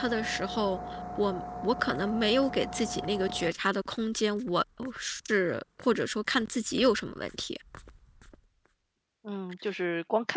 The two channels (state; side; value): identical; both; correlation 1.00